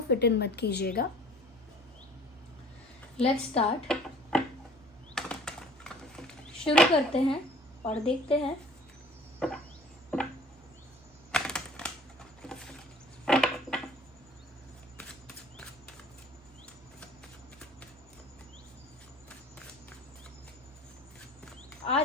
फिट इन मत कीजिएगा। लेट्स स्टार्ट, शुरू करते हैं और देखते हैं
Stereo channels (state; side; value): normal; both; correlation 0.50